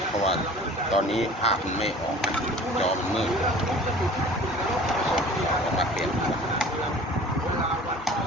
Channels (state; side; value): normal; both; correlation 0.45